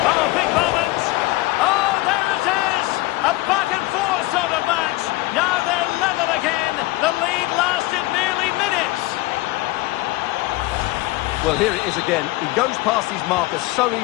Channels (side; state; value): right; quieter; 19.5 dB